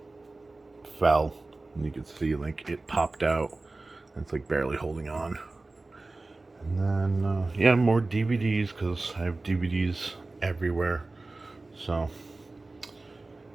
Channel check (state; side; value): quieter; left; 3.2 dB